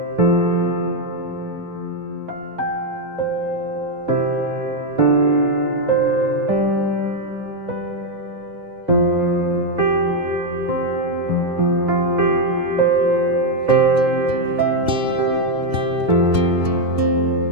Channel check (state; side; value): late; left; 2.8 ms